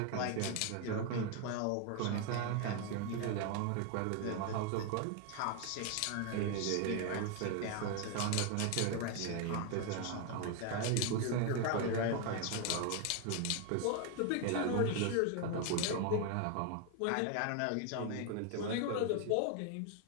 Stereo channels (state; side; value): different; both; correlation 0.01